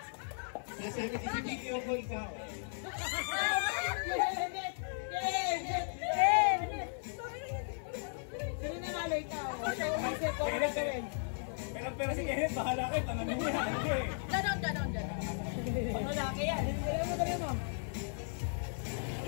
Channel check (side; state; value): right; silent; 54 dB below the other